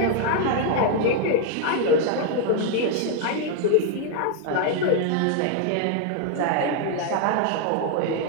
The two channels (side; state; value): both; different; correlation 0.00